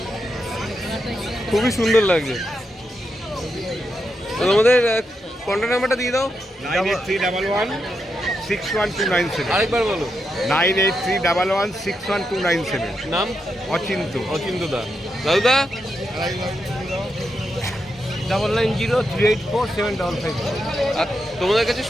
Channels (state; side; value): normal; both; correlation 0.85